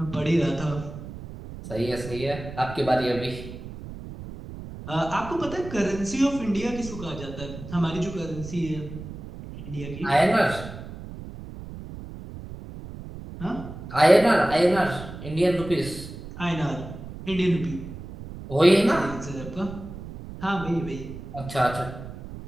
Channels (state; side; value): noise; right; rumble, 12 dB below the sound